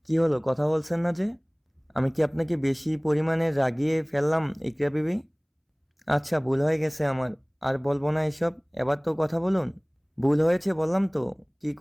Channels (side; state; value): both; identical; correlation 1.00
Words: কি হলো, কথা বলছেন না যে? আমি কি আপনাকে বেশি পরিমাণে রাগিয়ে ফেললাম ইকরা বিবি? আচ্ছা, ভুল হয়ে গেছে আমার। আর বলবো না এসব। এবার তো কথা বলুন। ভুল হয়েছে বললাম তো। কি